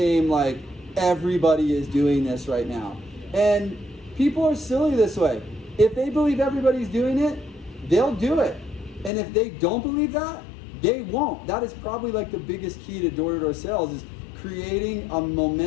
like everybody is doing this right now. And people are silly this way. If they believe everybody's doing it, they'll do it. And if they don't believe that, they won't. That is probably like the biggest key to door-to-door sales, is creating a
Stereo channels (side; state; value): right; drops out; at 9.1 s